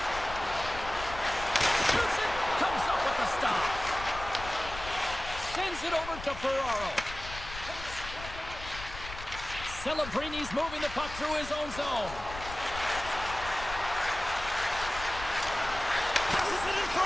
Shoots it. Comes up with the stop. Sends it over to Ferraro. Celebrini's moving the puck through his own zone. Passes it in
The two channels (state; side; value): noise; left; rumble, 12 dB below the sound